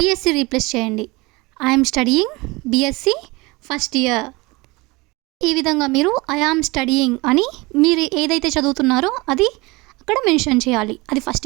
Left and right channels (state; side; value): quieter; left; 23.9 dB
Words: రీప్లేస్ చేయండి. I'm studying BSc first year. ఈ విధంగా మీరు ఐ యామ్ స్టడీయింగ్ అని మీరు ఏదైతే చదువుతున్నారో అది అక్కడ మెన్షన్ చేయాలి. అది ఫస్ట్